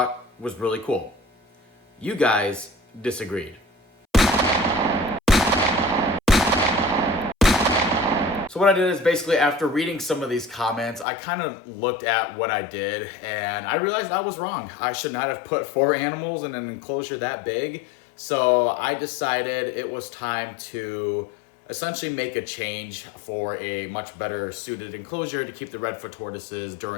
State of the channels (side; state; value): right; drops out; at 11.1 s